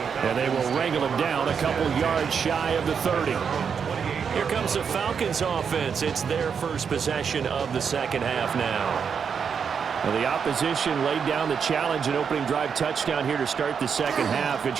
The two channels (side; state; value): left; quieter; 6.7 dB